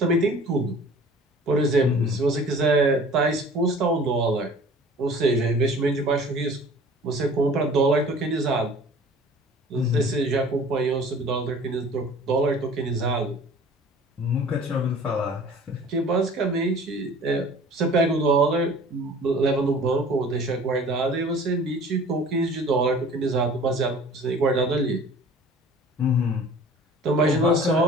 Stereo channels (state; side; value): normal; both; correlation 0.46